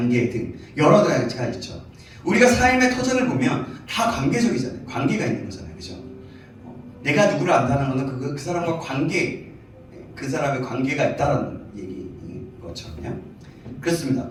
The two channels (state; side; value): identical; both; correlation 1.00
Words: 등 여러 가지가 있죠. 우리가 삶의 터전을 보면 다 관계적이잖아요. 관계가 있는 거잖아요. 그죠? 내가 누구를 안다는 것은 그 사람과 관계, 그 사람의 관계가 있다는 얘기인 것처럼요. 그렇습니다.